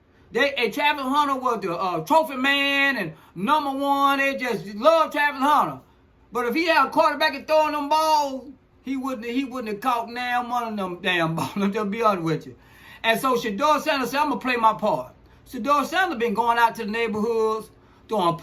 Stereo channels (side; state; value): both; identical; correlation 1.00